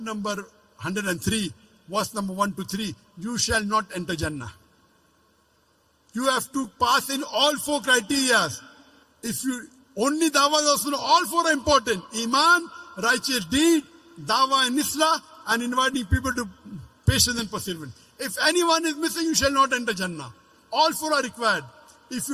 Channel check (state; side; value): identical; both; correlation 1.00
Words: number 103, verse number 1 to 3, you shall not enter Jannah. You have to pass in all 4 criteria. If you only dawah is also, all 4 are important. Iman, righteous deed, dawah and islah, and inviting people to patience and perseverance. If anyone is missing, you shall not enter Jannah. All 4 are required. If